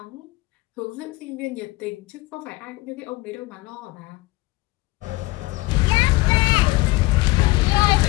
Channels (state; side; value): quieter; right; 21.1 dB